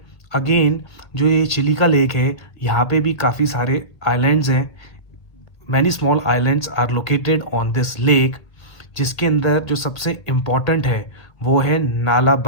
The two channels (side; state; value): right; late; 1.6 ms